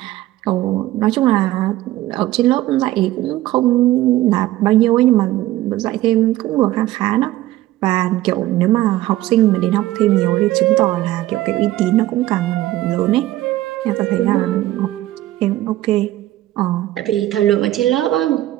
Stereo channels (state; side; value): quieter; left; 15.5 dB